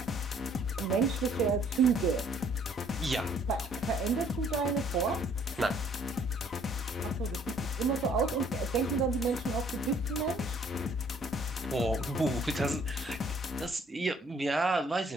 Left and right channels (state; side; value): normal; both; correlation 0.61